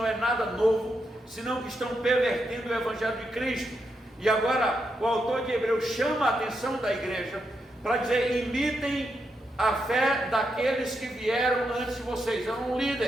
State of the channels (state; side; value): normal; both; correlation 0.83